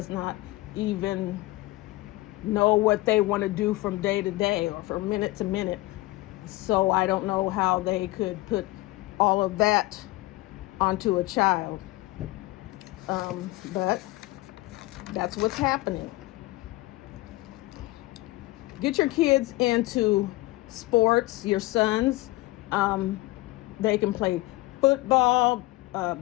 not even know what they want to do from day to day or from minute to minute. So I don't know how they could put all of that onto a child. But that's what's happening. Get your kids into sports, your sons. They can play football,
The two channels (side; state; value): right; quieter; 20.0 dB